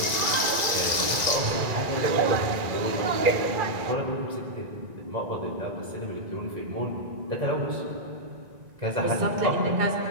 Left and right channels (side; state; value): left; late; 1.9 ms